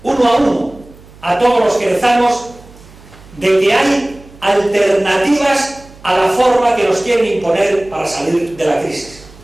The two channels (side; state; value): right; noise; hum, 23 dB below the sound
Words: uno a uno a todos los querezamos de que hay alternativas a la forma que nos quieren imponer para salir de la crisis.